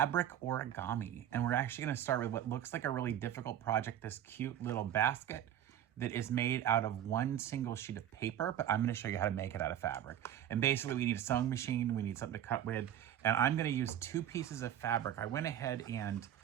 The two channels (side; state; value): left; quieter; 10.9 dB